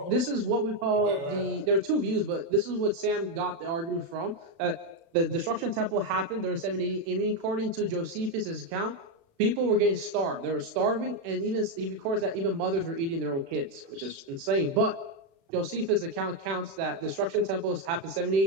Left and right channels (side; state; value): left; late; 36 ms